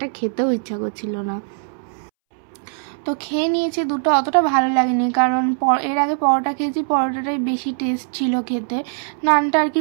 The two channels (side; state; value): left; silent; 65 dB below the other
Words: খেতেও ইচ্ছা করছিল না, তো খেয়ে নিয়েছি দুটো। অতটা ভালো লাগেনি, কারণ এর আগে পরোটা খেয়েছি, পরোটাটাই বেশি টেস্ট ছিল খেতে, নানটা আর কি